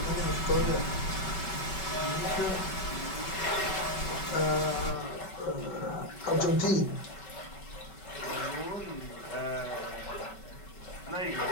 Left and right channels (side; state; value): right; late; 5.2 ms